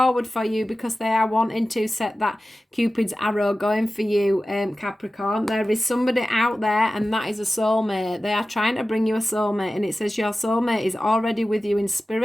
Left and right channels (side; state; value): both; normal; correlation 0.95